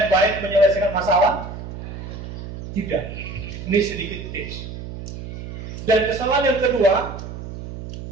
yang baik menyelesaikan masalah? Tidak. Ini sedikit tips. Dan kesalahan yang kedua,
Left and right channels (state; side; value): noise; right; hum, 10 dB below the sound